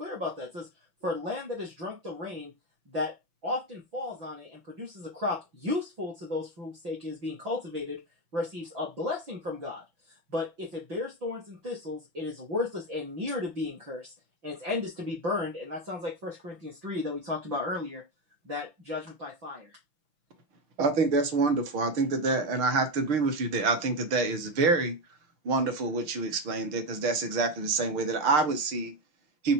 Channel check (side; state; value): left; late; 5.9 ms